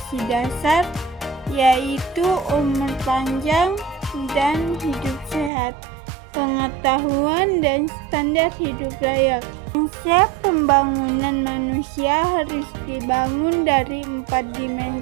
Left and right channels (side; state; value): left; drops out; at 5.5 s